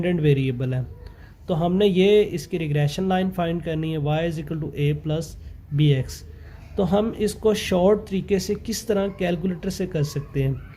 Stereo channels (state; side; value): identical; both; correlation 1.00